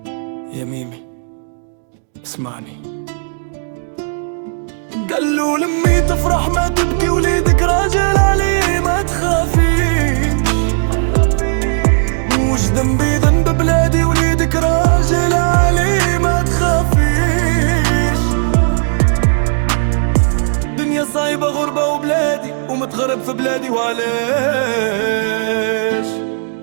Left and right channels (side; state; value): left; silent; 70 dB below the other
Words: يا ميمي اسمعني. قال له لمي تفرح ما تبكي، وليدك راجل عليه ما تخافيش. مش ذنبي ذنب بلادي، وليدك راجل عليه ما تخافيش. دنيا صعيبة غربة وبلادي، ومتغرب في بلادي وعلاش.